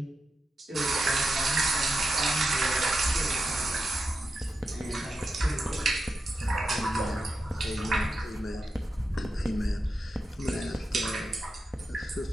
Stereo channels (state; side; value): normal; both; correlation 0.89